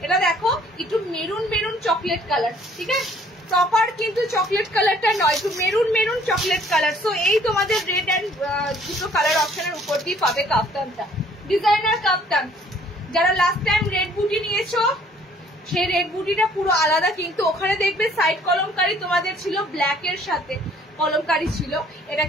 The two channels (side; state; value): both; normal; correlation 0.58